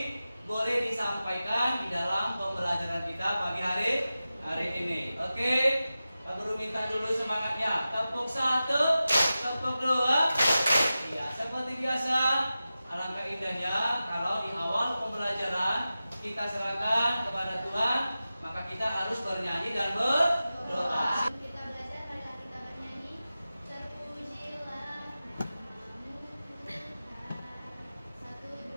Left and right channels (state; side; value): inverted; both; correlation -0.94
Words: boleh disampaikan di dalam pembelajaran kita pagi hari ini. Oke, Pak Guru minta dulu semangatnya. Tepuk satu, tepuk dua. Iya, seperti biasa. Alangkah indahnya kalau di awal pembelajaran kita serahkan kepada Tuhan, maka kita harus bernyanyi dan berdoa. Kita belajar, marilah kita bernyanyi. Terpujilah namamu Tuhan. 1,